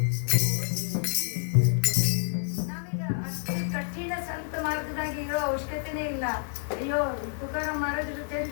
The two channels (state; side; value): silent; right; digital silence